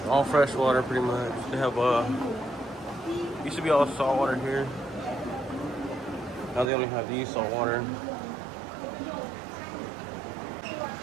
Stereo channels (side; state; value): left; drops out; at 6.7 s